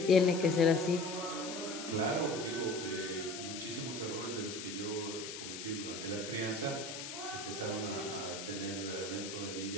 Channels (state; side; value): noise; left; hiss, 8 dB below the sound